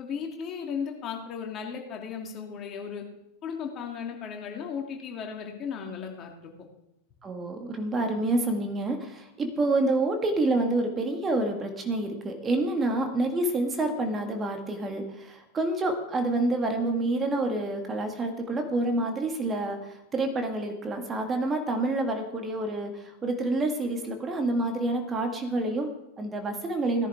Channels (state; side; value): normal; both; correlation 0.54